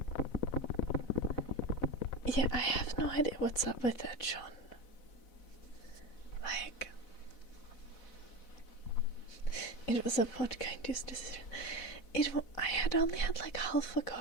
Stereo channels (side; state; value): right; late; 4.0 ms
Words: Yeah, I have no idea what's up with that, Sean. Like, it was a vodka-induced decision. I had only had like half a